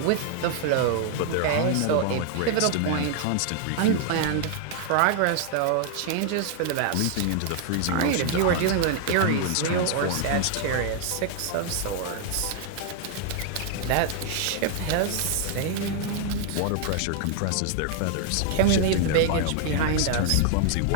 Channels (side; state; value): both; different; correlation 0.00